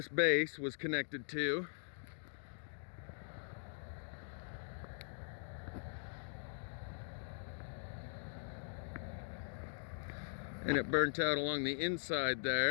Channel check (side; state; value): right; silent; digital silence